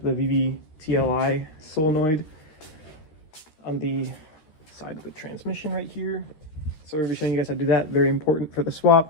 the VVTLI solenoid on the side of the transmission right here. So we'll be showing you guys how to do that. Very important for the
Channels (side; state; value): right; late; 13 ms